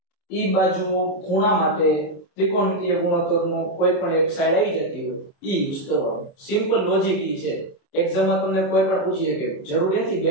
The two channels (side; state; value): right; late; 27 ms